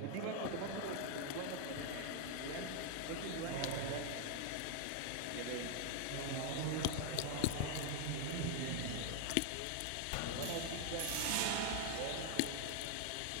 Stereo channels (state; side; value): different; both; correlation 0.00